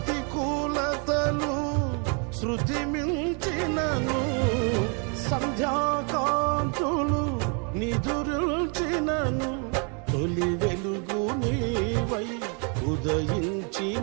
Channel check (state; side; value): quieter; left; 36.9 dB